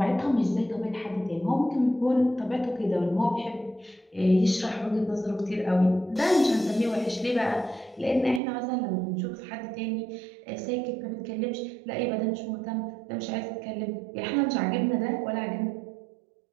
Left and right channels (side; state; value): left; drops out; at 8.4 s